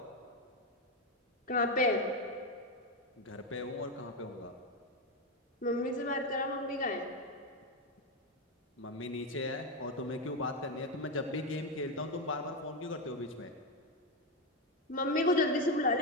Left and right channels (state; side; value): normal; both; correlation 0.09